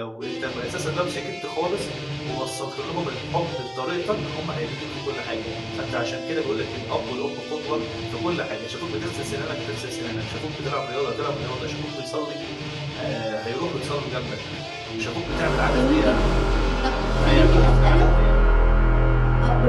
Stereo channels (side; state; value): both; identical; correlation 1.00